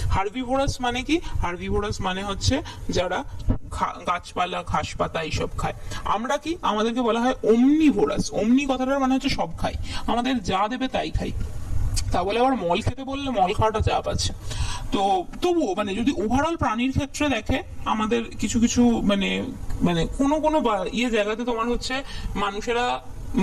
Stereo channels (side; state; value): both; identical; correlation 1.00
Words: হার্বিভোরাস মানে কি? হার্বিভোরাস মানে হচ্ছে যারা গাছপালা ঘাস পাতা এইসব খায়। আমরা কি? আমাদেরকে বলা হয় ওমনিভোরাস। ওমনি কথাটার মানে হচ্ছে সব খাই, আমাদের যা দেবে তাই খাই। তা বলে আবার মল খেতে বললে মল খাওয়াটা চাপ আছে। তো তবুও মানে যদি ওভারঅল প্রাণীর ক্ষেত্রে দেখে, আমাদের কিছু কিছু মানে মানে কোনো কোনো জায়গাতে তোমার হচ্ছে মানুষেরা